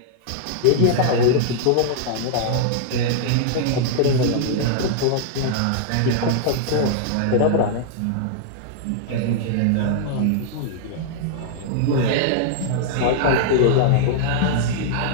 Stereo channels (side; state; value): both; different; correlation -0.01